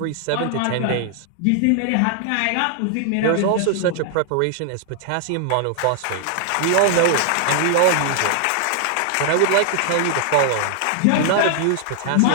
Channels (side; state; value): both; different; correlation 0.00